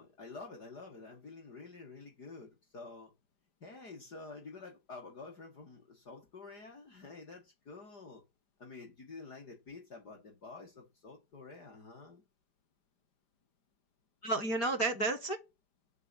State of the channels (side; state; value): right; late; 5.0 ms